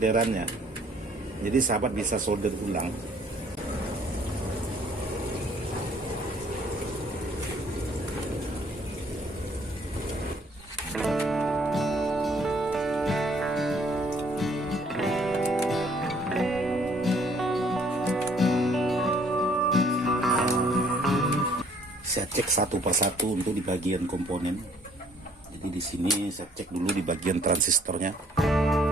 Jadi sahabat bisa solder ulang. Saya cek satu persatu untuk di bagian komponen. Jadi di sini saya cek dulu di bagian transistornya.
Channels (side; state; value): both; normal; correlation 0.61